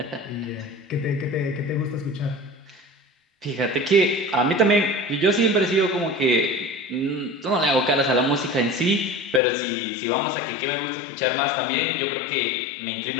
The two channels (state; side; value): drops out; right; at 9.4 s